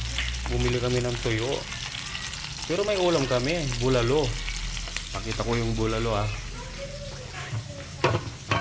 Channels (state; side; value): identical; both; correlation 1.00